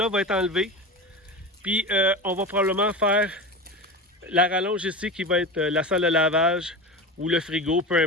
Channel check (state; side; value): normal; both; correlation 0.26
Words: va être enlevé. Puis, on va probablement faire la rallonge ici qui va être la salle de lavage ou le frigo, peu